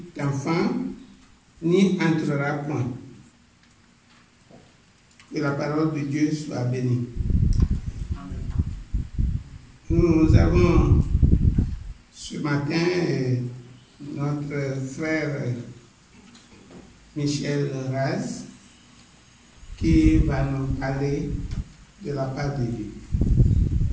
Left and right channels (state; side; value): identical; both; correlation 1.00